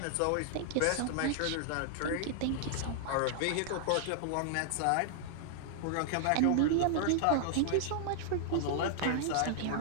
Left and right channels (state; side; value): different; both; correlation -0.01